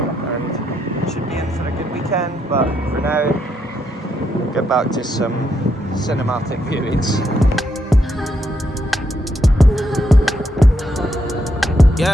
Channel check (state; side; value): normal; both; correlation 0.78